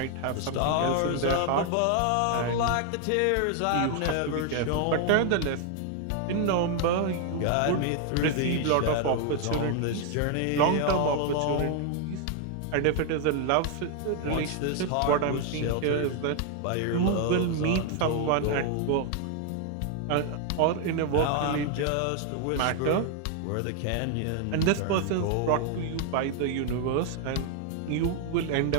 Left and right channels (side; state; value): both; different; correlation 0.00